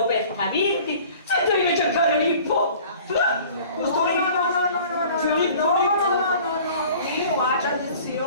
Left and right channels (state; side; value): inverted; both; correlation -0.47